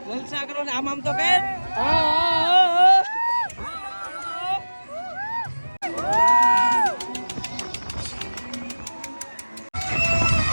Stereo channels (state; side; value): inverted; both; correlation -1.00